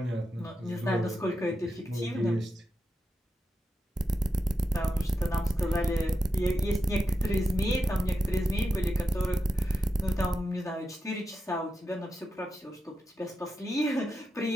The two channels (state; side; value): normal; both; correlation 0.88